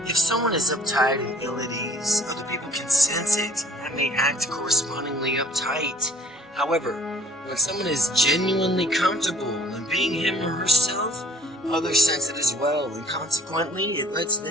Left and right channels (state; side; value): normal; both; correlation 0.53